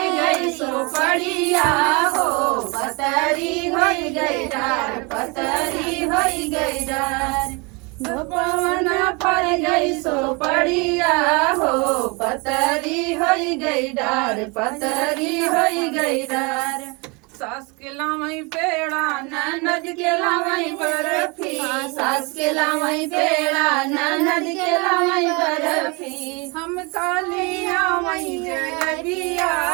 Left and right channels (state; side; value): quieter; left; 29.2 dB